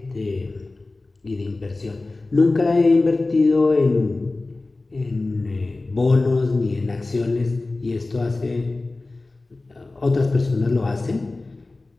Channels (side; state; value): right; quieter; 3.2 dB